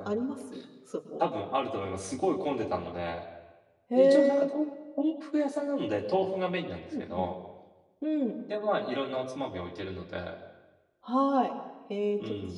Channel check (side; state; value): both; identical; correlation 1.00